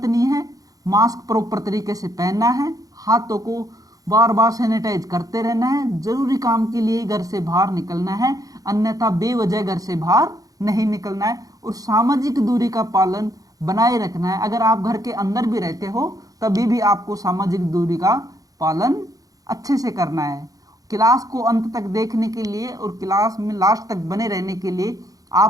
है, मास्क प्रॉपर तरीके से पहनना है, हाथों को बार बार सैनिटाइज करते रहना है, जरूरी काम के लिए घर से बाहर निकलना है, अन्यथा बेवजह घर से बाहर नहीं निकलना है और सामाजिक दूरी का पालन बनाए रखना है। अगर आप घर के अंदर भी रहते हो तभी भी आपको सामाजिक दूरी का पालन अच्छे से करना है। क्लास को अंत तक देखने के लिए और क्लास में लास्ट तक बने रहने के लिए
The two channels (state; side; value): late; left; 0.17 ms